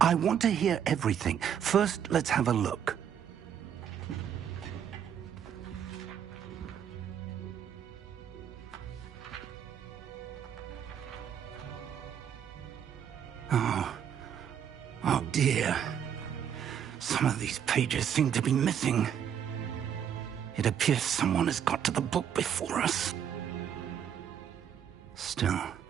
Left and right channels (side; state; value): left; quieter; 8.8 dB